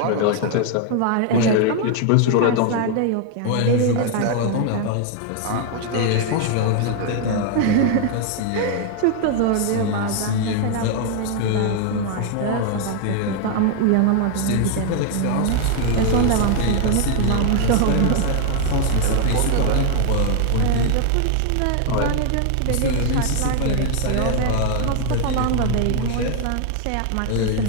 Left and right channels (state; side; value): different; both; correlation 0.00